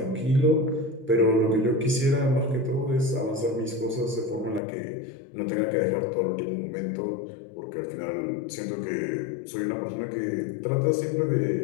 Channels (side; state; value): right; drops out; at 4.6 s